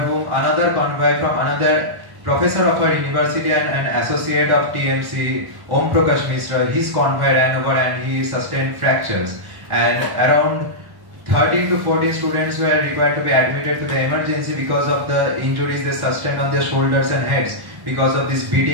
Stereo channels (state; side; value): late; left; 1.1 ms